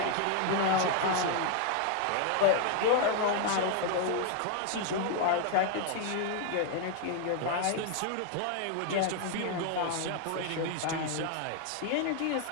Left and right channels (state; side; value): different; both; correlation 0.00